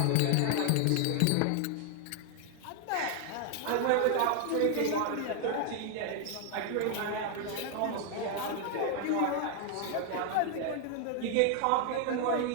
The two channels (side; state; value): both; different; correlation 0.00